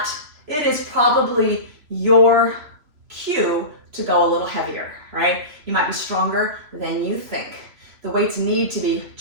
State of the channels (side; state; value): left; late; 3.0 ms